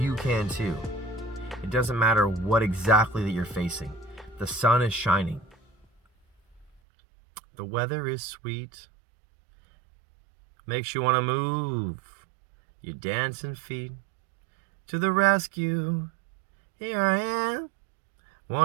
can too. It doesn't matter what exactly that you're facing. The sun is shining. The weather is sweet, makes you want to move your dancing feet. To the rescue, here I am.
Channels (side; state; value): left; drops out; at 6.8 s